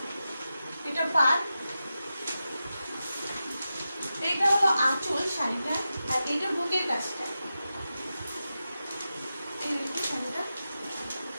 এটা পাড়, এটা হলো আঁচল শাড়িটা, আর এটা বুকের কাছটা। এই দেখুন শাড়িটা।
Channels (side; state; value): both; inverted; correlation -0.91